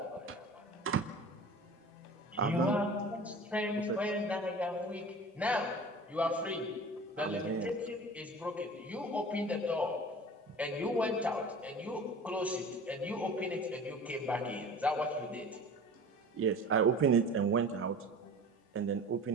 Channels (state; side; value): normal; both; correlation 0.40